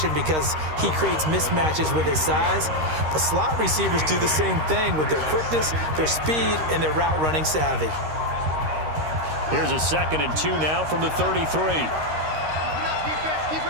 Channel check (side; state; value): left; late; 13 ms